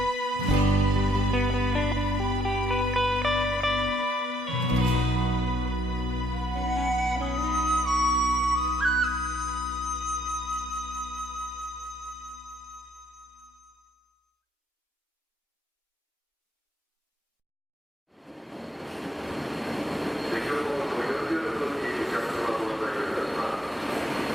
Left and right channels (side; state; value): both; normal; correlation 0.71